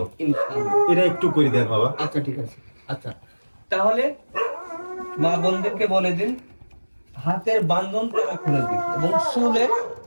ইনশাআল্লাহ। এটা একটু করে দেন বাবা। আচ্ছা ঠিক আছে। আচ্ছা, তাহলে মা বোনদেরকে বলে দিন হাতের বান্ধন তারা খুলে দিক এবং চুলের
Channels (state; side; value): inverted; both; correlation -1.00